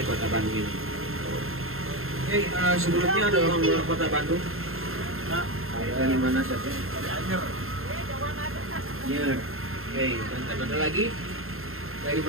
kota Bandung ini. Oke, sebelumnya ada orang luar kota Bandung. Dari mana saja? Anyer. Oke, dan ada lagi dari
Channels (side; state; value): left; late; 0.61 ms